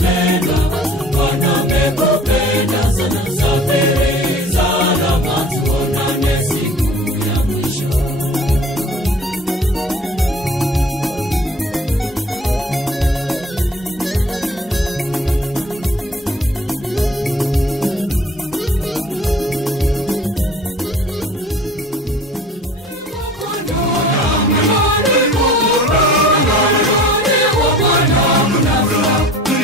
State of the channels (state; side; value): normal; both; correlation 0.47